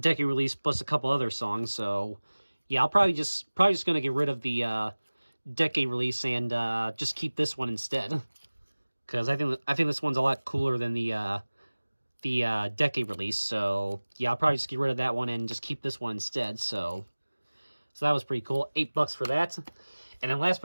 release, plus a couple other songs. So yeah, I'll probably just gonna get rid of the decade release and just keep this one instead, because I think this one's a lot cooler than the decade release. So yeah, I'll probably just get rid of that one and just keep this one instead. So that was pretty cool. $8 for that. And then last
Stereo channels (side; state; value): both; inverted; correlation -1.00